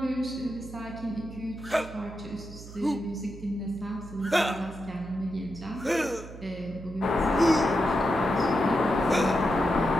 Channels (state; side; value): noise; right; hum, 14 dB below the sound